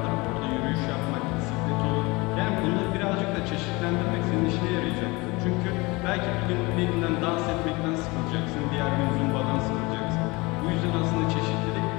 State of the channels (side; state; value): right; quieter; 24.4 dB